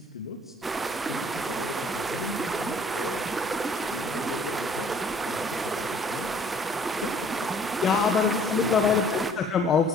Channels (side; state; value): both; normal; correlation 0.57